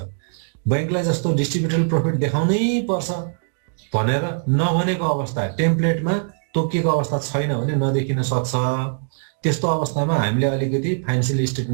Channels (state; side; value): silent; left; digital silence